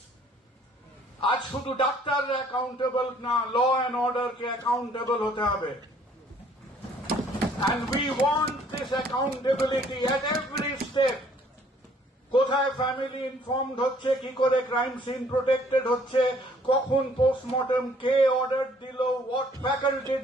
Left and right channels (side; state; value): both; normal; correlation 0.60